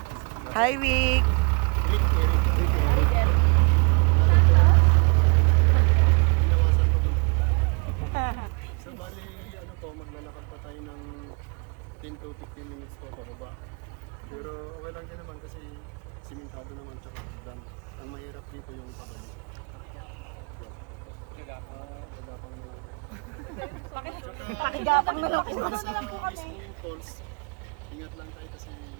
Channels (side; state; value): left; quieter; 32.5 dB